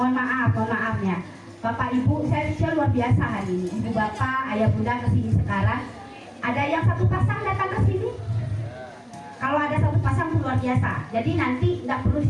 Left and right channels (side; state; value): both; identical; correlation 1.00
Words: maafnya. Bapak Ibu, saya luar biasa hari ini. Ibu bapak, ayah bunda kesini sekarang. Ada yang satu pasang datang ke sini? Kalau ada satu pasang luar biasa. Jadi nanti nggak perlu